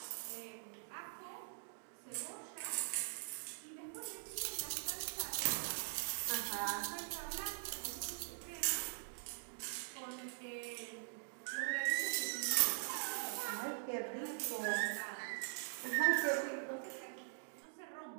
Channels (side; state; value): left; silent; digital silence